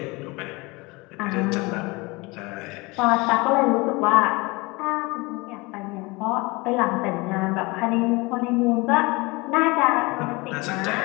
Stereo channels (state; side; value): quieter; right; 24.9 dB